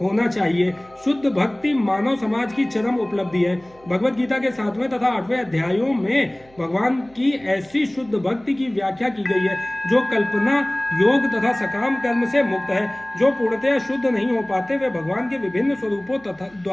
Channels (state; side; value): noise; right; hum, 28 dB below the sound